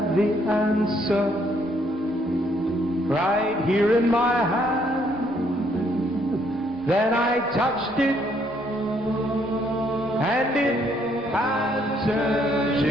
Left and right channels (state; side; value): normal; both; correlation 0.69